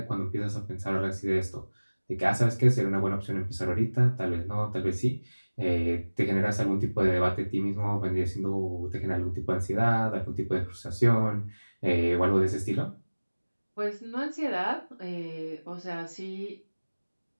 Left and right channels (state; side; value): inverted; both; correlation -1.00